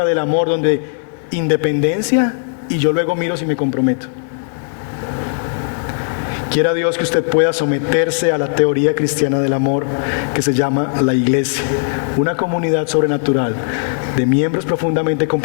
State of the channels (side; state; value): right; silent; digital silence